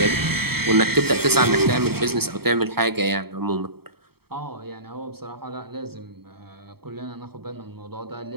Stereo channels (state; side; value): late; left; 0.96 ms